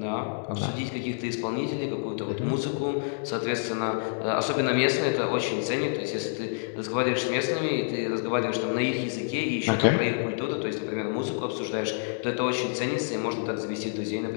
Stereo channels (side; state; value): right; silent; digital silence